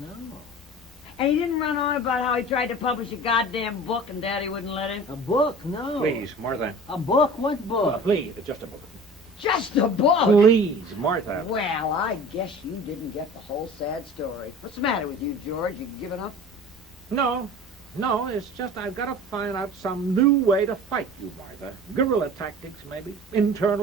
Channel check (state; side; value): normal; both; correlation 0.40